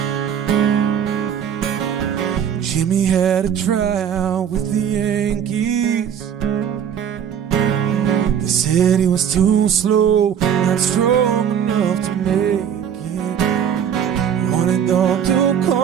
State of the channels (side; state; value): left; quieter; 8.5 dB